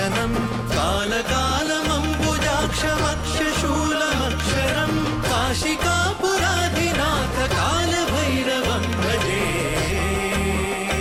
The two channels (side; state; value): both; identical; correlation 1.00